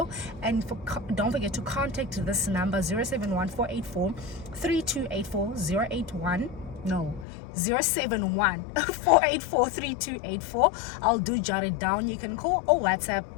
and don't forget to contact this number 071 484 3284 081 No, 071 484 3284. I'll do jot it down. You can call or WhatsApp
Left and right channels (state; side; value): drops out; right; at 7.2 s